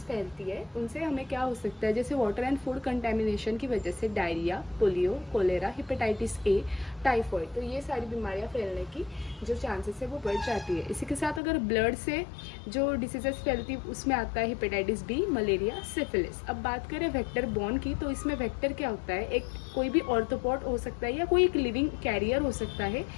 फैलती है, उनसे हमें क्या हो सकता है, जैसे वाटर एंड फूड कंटेमिनेशन की वजह से diarrhoea, polio, cholera, hepatitis A, typhoid, तो ये सारी बीमारियां फैलने की जो चांसेस है वो बढ़ जाती है। इसी के साथ अगर ब्लड से जो डिसीजेस फैलती है उसमें आता है हिपेटाइटिस बी, मलेरिया, सिफिलिस। अब बात करें वेक्टर बॉर्न की, तो इसमें वेक्टर क्या होता है, एक कोई भी ऑर्थोपॉड हो सकता है या कोई एक लिविंग कैरियर हो सकता है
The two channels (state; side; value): drops out; right; at 11.4 s